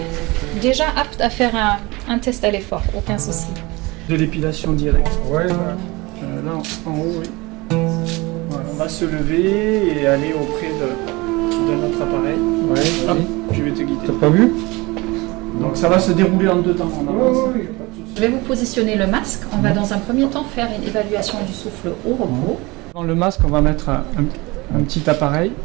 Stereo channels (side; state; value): left; quieter; 23.4 dB